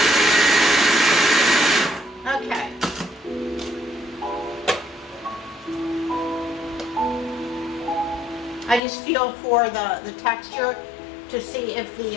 Okay. I just feel for the texture to see if the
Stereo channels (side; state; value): right; drops out; at 8.8 s